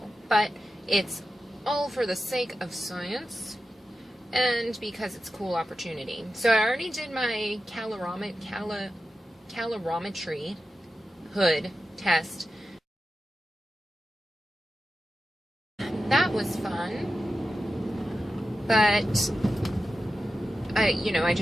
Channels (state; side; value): normal; both; correlation 0.92